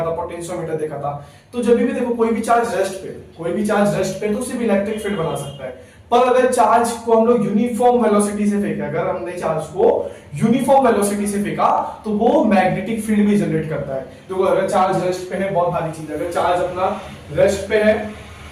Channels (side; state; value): both; identical; correlation 1.00